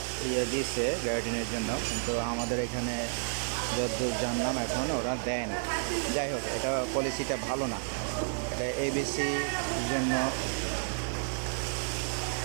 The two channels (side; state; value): left; silent; digital silence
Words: দিয়েছে গ্যারাটিনের জন্য, কিন্তু আমাদের এখানে যতদূর জানলাম এখন ওরা দেয় না। যাই হোক, এটা পলিসিটা ভালো না। এটা এবিসির জন্য